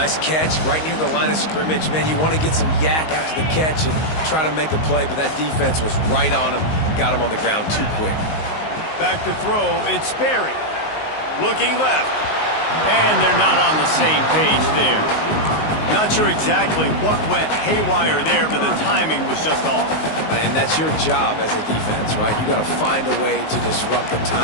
catch right near the line of scrimmage. Man, you want to get some yak after the catch and try to make a play, but that defense was right on him. Got him on the ground too quick. Back to throw, it's Sperry. Looking left. And they're not on the same page there. Not sure exactly what went haywire there, but the timing was just off. And that's your job as a defense, right? You got to find a way to disrupt the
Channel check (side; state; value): right; late; 19 ms